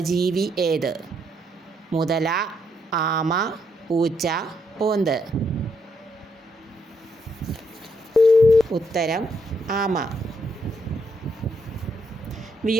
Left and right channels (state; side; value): normal; both; correlation 0.77